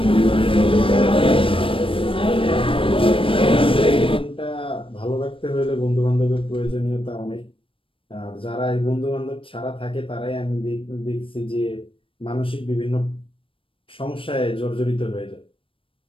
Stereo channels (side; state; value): right; late; 0.26 ms